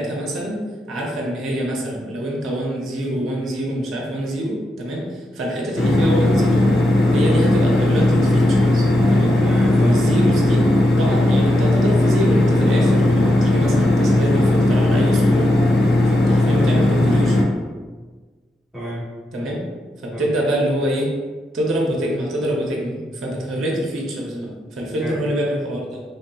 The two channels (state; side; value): normal; both; correlation 0.85